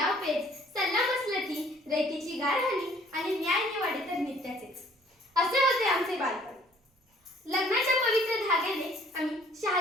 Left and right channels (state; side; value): normal; both; correlation 0.58